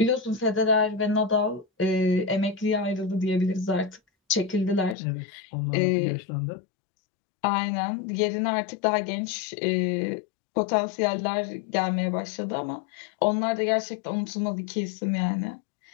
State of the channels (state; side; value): drops out; right; at 5.0 s